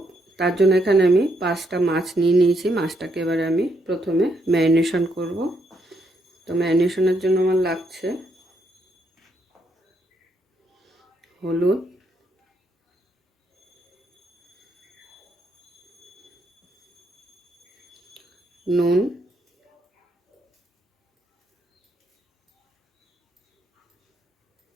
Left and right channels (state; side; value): normal; both; correlation 0.76